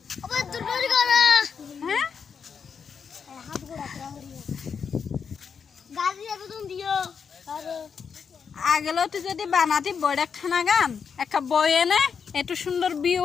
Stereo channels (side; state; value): right; quieter; 6.4 dB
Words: হ্যাঁ আগেলো তো যদি বানাতি বড় খানা গান একটা বই এনে একটু সুন্দর বিয়ে